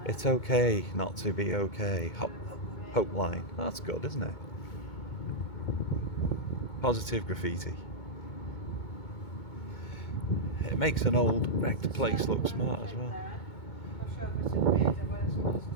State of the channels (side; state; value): right; late; 2.2 ms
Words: It's okay not to be okay. Hope line. That's good, isn't it? Positive graffiti. It makes an old wrecked place look smart as well. Not sure if it's a grid or whether it's just